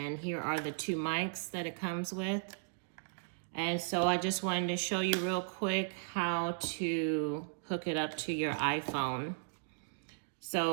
here are the two mics that it comes with. And so I just wanted to show you real quick how to hook it up to your iPhone.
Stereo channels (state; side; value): silent; left; digital silence